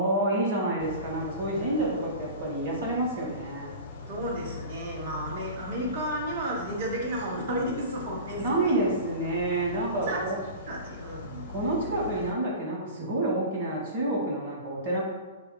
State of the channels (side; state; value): both; inverted; correlation -0.33